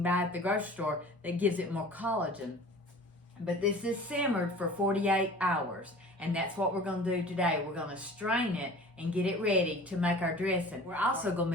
buy at the grocery store that gives it more collagen. But this is simmered for 48 hours. And that's what we're going to do today. We're going to strain it and get it ready to make our dressing. We're also going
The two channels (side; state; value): both; normal; correlation 0.43